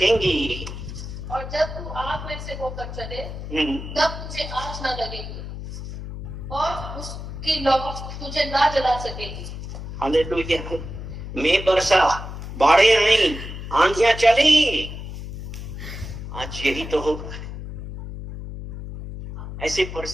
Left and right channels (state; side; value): noise; left; hum, 9 dB below the sound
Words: और जब तू आग में से होकर चले, तब तुझे आग ना लगेगी, और उसकी लौ तुझे ना जला सकेगी। हालेलुया। मैं बरसा, बाढ़ें आई, आंधियां चली, आज यही तो होगा। ऐसी